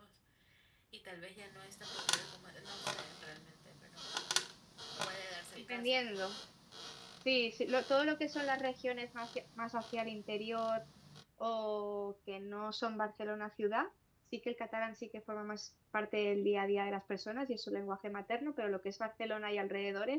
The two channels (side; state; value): both; identical; correlation 1.00